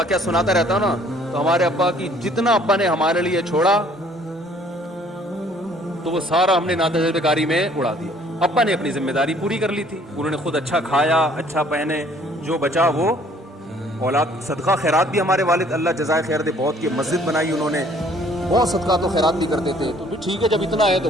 سناتا رہتا ہوں نا. تو ہمارے ابا کی جتنا ابا نے ہمارے لیے چھوڑا تو وہ سارا ہم نے ناتجربے کاری میں اڑا دیا. ابا نے اپنی ذمہ داری پوری کر لی تھی, انہوں نے خود اچھا کھایا, اچھا پہنے, جو بچا وہ اولاد. صدقہ خیرات بھی ہمارے والد اللہ جزائے خیر دے بہت کی مسجد بنائی انہوں نے, بہت صدقات و خیرات بھی کرتے تھے. تو ٹھیک ہے جب اتنا ہے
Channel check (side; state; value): both; normal; correlation 0.58